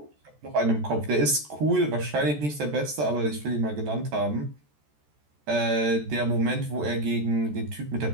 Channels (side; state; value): left; late; 14 ms